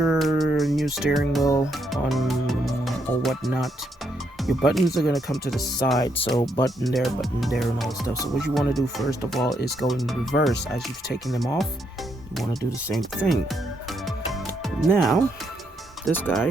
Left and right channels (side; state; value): both; normal; correlation 0.76